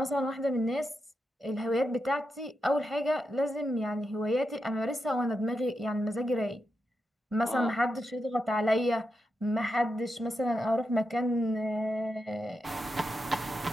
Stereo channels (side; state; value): both; normal; correlation 0.86